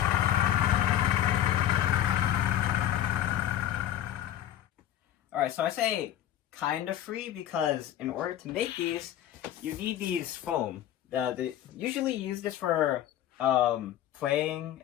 Alright, so I say kind of free because in order to make these, you need these foam. They usually use this for playing,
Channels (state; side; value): quieter; right; 11.9 dB